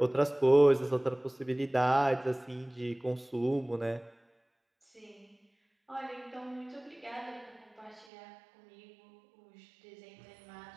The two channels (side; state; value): left; drops out; at 8.1 s